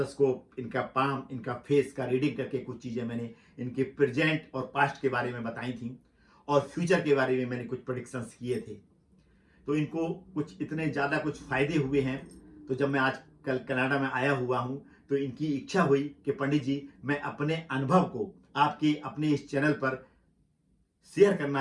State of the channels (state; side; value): identical; both; correlation 1.00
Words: इनका पाम, इनका फेस का रीडिंग करके कुछ चीज़ें मैंने इनके प्रेजेंट और पास्ट के बारे में बताई थी और फ्यूचर के बारे में मैंने कुछ प्रेडिक्शंस किए थे। तो इनको कुछ इतने ज़्यादा कुछ फ़ायदे हुए हैं। तो जब मैं आज कल कनाडा में आया हुआ हूँ तो इनकी इच्छा हुई कि पंडित जी, मैं अपने अनुभव को आपके अपने इस चैनल पर शेयर